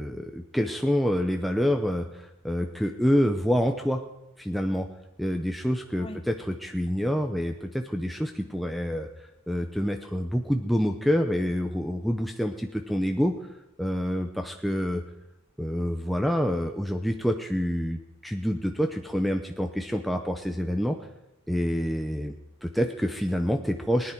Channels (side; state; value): both; normal; correlation 0.93